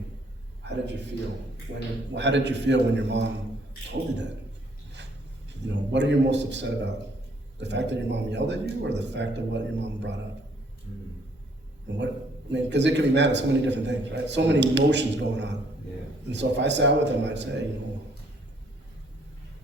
How did you feel? How did you feel when your mom told you that? You know, what are you most upset about? The fact that your mom yelled at you, or the fact of what your mom brought up? And what, I mean, because it could be mad at so many different things, right? So many emotions going on. Yeah. And so if I sat with them, I'd say, you know,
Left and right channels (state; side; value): normal; both; correlation 0.65